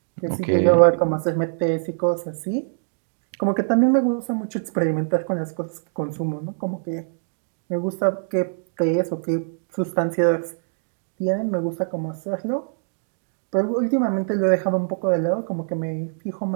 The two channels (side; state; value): left; silent; digital silence